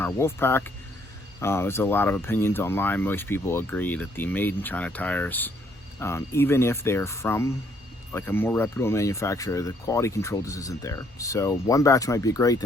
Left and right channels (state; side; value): normal; both; correlation 0.67